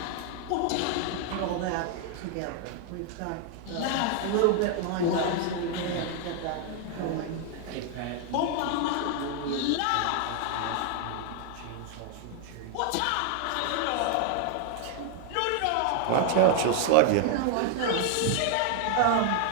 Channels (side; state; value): both; different; correlation 0.00